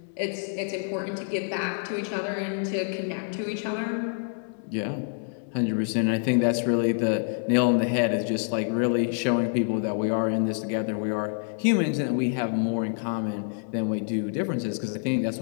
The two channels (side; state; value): right; silent; 60 dB below the other